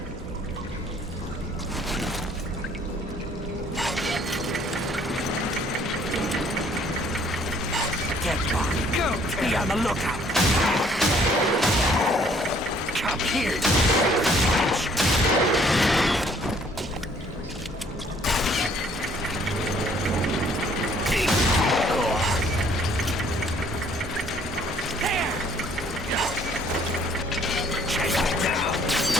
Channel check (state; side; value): normal; both; correlation 0.60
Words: Get back. Go. Be on the lookout. Come here.